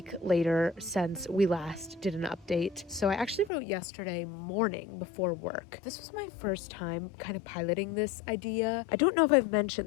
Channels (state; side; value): drops out; right; at 3.5 s